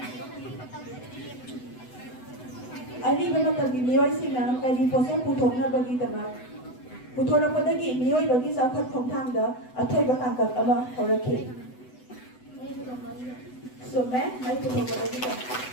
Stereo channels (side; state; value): right; late; 8.0 ms